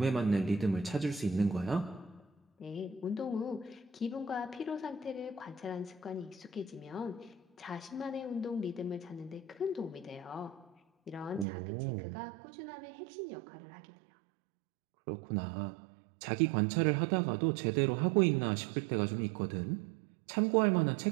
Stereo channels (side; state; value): left; drops out; at 11.5 s